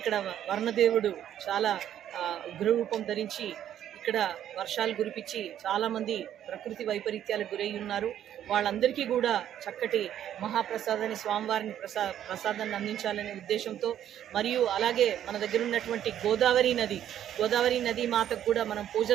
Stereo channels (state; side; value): quieter; left; 10.8 dB